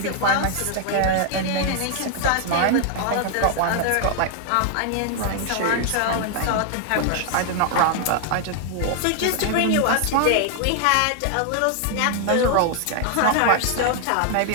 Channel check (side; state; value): both; different; correlation 0.00